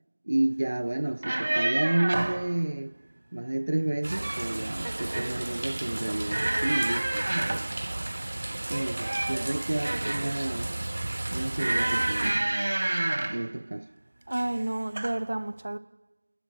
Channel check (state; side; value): inverted; both; correlation -1.00